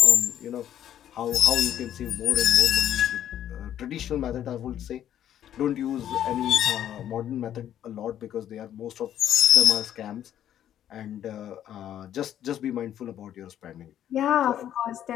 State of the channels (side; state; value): right; quieter; 10.8 dB